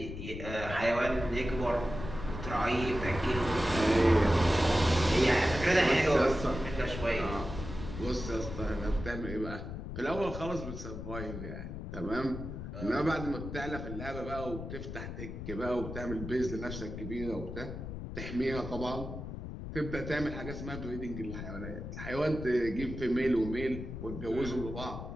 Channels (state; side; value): noise; left; rumble, 8 dB below the sound